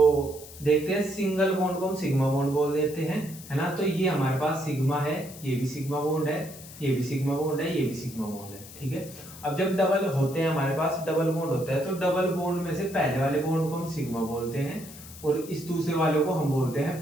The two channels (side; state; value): left; noise; hiss, 16 dB below the sound